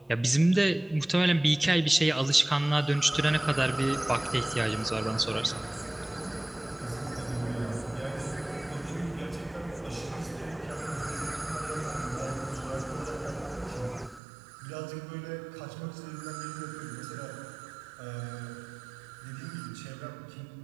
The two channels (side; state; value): left; drops out; at 14.2 s